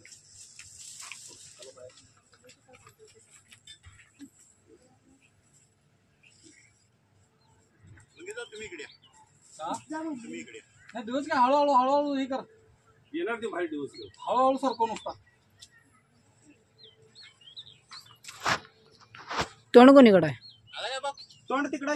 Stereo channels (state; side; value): identical; both; correlation 1.00